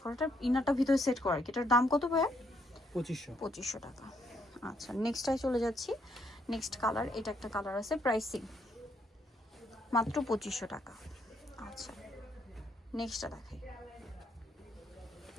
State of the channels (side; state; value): both; normal; correlation 0.73